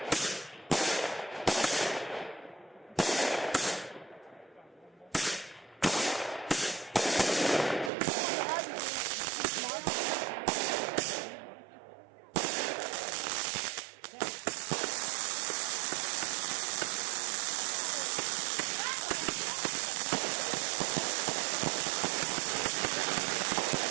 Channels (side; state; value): left; drops out; at 7.9 s